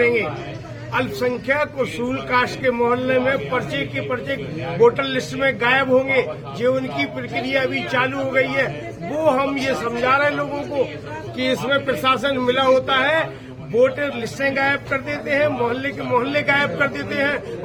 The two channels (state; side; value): identical; both; correlation 1.00